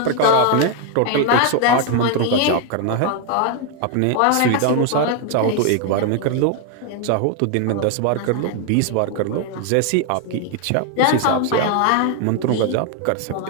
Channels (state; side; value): different; both; correlation 0.00